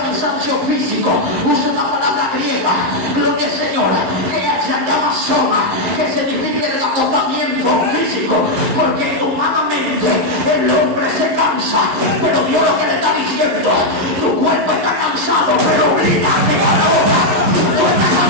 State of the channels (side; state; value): left; late; 11 ms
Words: físico. Usa una palabra griega, gloria al Señor, que se llama soma, que significa el agotamiento físico, porque humanamente el hombre se cansa, pero Dios lo que le está diciendo, tu cuerpo está cansado, pero obligate a la boca. Tú estás